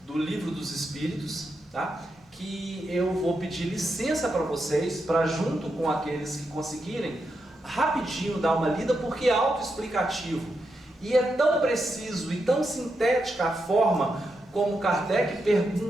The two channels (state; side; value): normal; both; correlation 0.85